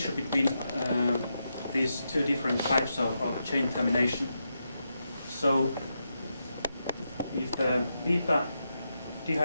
between these two different types of chain termination. So if the beta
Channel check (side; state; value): both; inverted; correlation -0.85